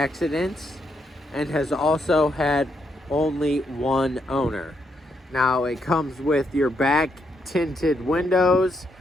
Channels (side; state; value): both; normal; correlation 0.78